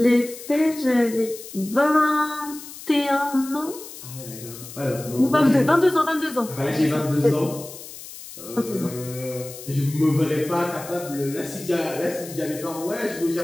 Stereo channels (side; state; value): left; noise; hiss, 14 dB below the sound